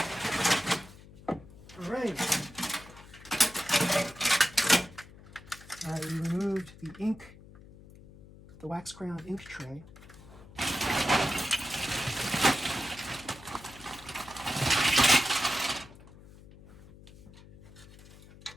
All right. All right, we removed the ink, the wax crayon ink tray.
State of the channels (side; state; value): left; noise; hum, 20 dB below the sound